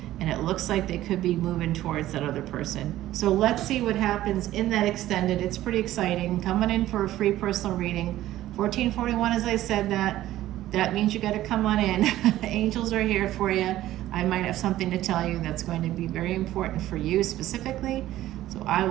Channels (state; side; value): quieter; left; 14.4 dB